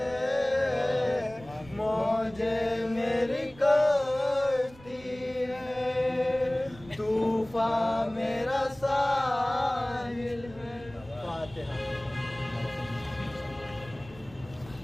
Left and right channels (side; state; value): right; noise; rumble, 21 dB below the sound